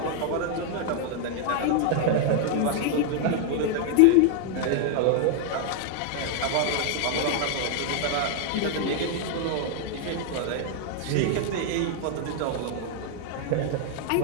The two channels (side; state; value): both; different; correlation 0.00